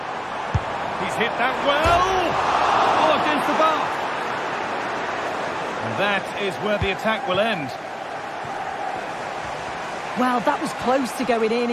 hit that well. Oh, against the bar. And that is where the attack will end. Well, that was close to going in,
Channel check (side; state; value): both; identical; correlation 1.00